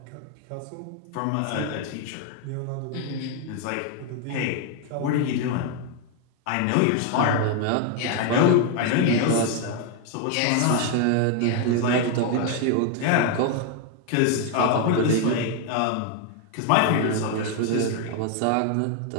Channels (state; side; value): different; both; correlation 0.01